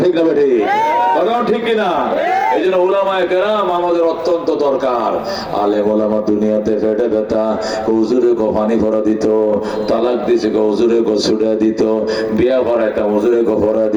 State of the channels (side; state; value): both; identical; correlation 1.00